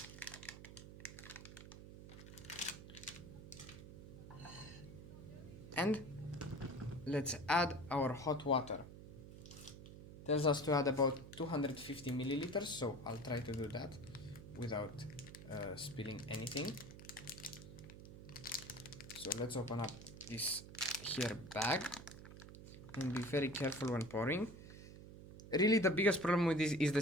And let's add our hot water. Tells us to add about 250 milliliters, so I'll try to do that without spilling anything. So let's open up this here bag and be very careful when pouring. Really, the biggest problem with this is the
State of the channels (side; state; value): right; noise; hum, 14 dB below the sound